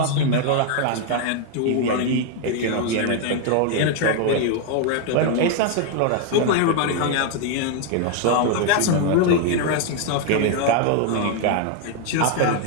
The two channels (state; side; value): different; both; correlation 0.01